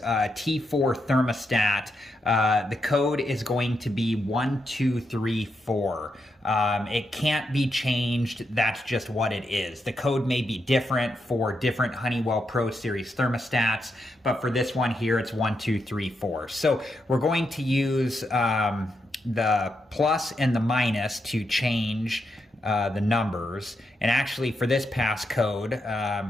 thermostat, the code is going to be 1234. It can't be changed. That's just what it is. The code may be different for different Honeywell Pro Series thermostats, but for this one here, it's 1234. So we're going to use the plus and the minus to change the numbers. And actually for this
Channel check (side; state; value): both; normal; correlation 0.83